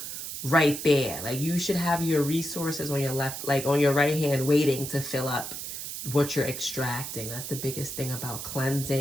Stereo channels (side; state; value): right; noise; hiss, 7 dB below the sound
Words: right there. Like you should have your resources on your left, like on your right hand, waiting to fill up what you're extracting. That's the biggest thing about